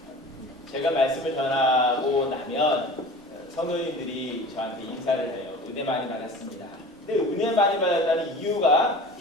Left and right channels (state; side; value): normal; both; correlation 0.39